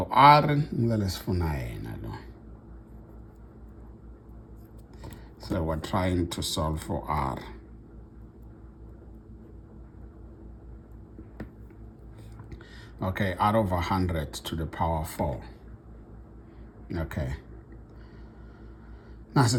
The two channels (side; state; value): both; identical; correlation 1.00